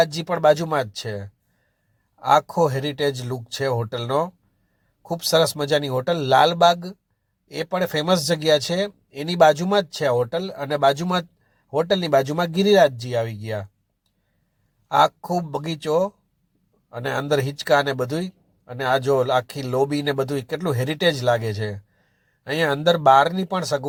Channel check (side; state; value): both; identical; correlation 1.00